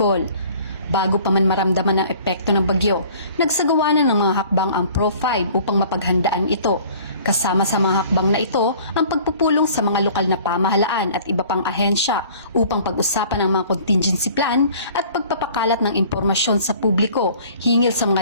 Bago pa man maramdaman ang epekto ng bagyo, nagsagawa na ng mga hakbang ang Pro-5 upang mapaghandaan ito. Kasama sa mga hakbang na ito ang pagpupulong sa mga lokal na pamahalaan at iba pang ahensya upang pag-usapan ang mga contingency plan at pagpapakalat ng impormasyon sa publiko hinggil sa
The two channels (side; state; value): both; inverted; correlation -0.50